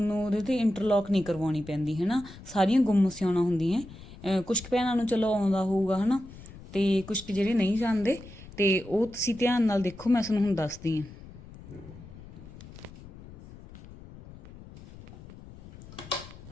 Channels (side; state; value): left; noise; rumble, 17 dB below the sound